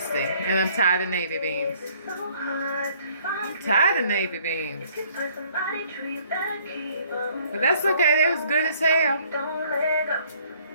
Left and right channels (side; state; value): both; inverted; correlation -0.61